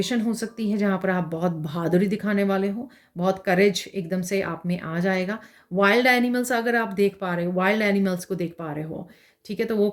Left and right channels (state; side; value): identical; both; correlation 1.00